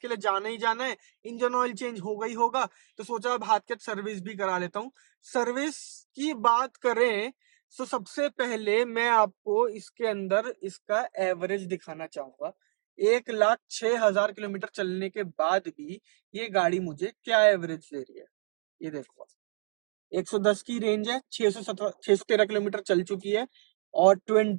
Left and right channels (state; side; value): silent; left; digital silence